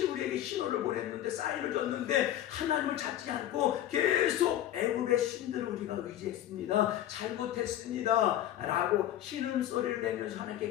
우리에게 신호를 보냈는데 사인을 줬는데 하나님을 찾지 않고 계속 애굽의 신들을 우리가 의지했습니다. 잘못했습니다. 라고 신음소리를 내면서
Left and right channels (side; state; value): right; quieter; 12.3 dB